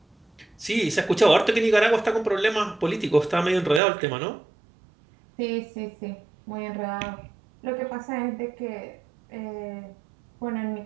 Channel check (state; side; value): drops out; left; at 3.8 s